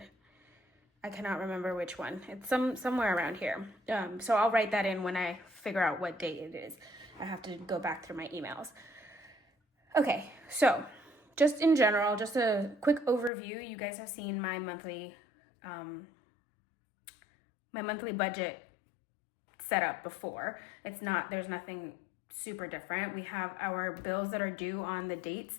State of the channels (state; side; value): drops out; right; at 13.3 s